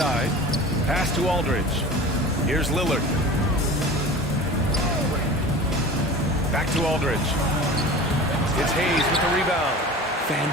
Pass to Aldridge. Here's Lillard. Back to Aldridge. It's Hayes with the rebound.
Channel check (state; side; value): normal; both; correlation 0.37